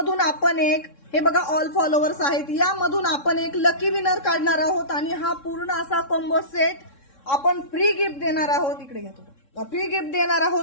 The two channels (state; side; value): late; right; 3.6 ms